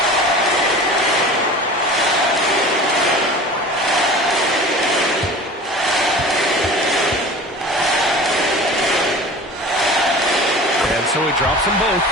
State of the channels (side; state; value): both; normal; correlation 0.38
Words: And so he drops them both,